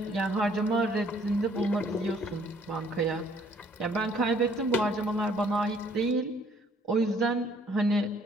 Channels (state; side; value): normal; both; correlation 0.61